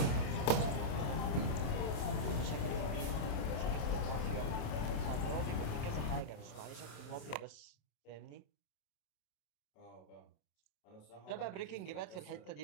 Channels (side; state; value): right; late; 27 ms